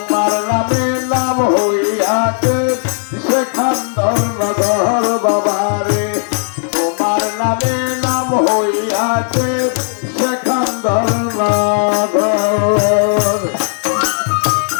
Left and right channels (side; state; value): right; silent; digital silence